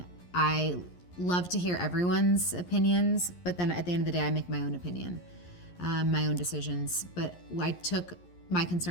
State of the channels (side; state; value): right; late; 11 ms